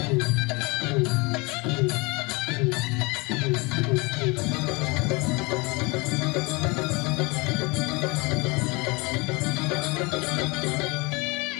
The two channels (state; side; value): quieter; right; 27.0 dB